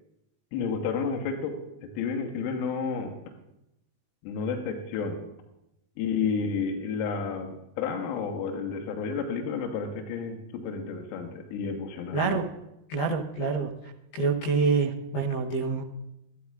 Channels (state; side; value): late; right; 20 ms